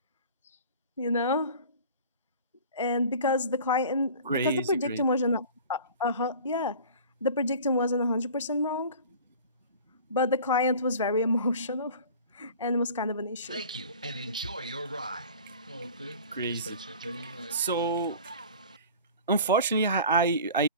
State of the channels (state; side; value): inverted; both; correlation -0.42